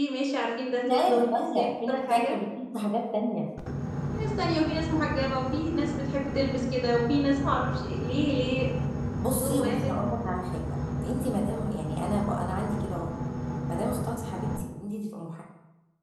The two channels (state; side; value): identical; both; correlation 1.00